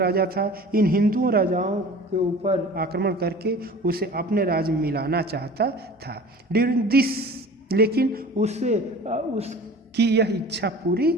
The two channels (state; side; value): normal; both; correlation 0.41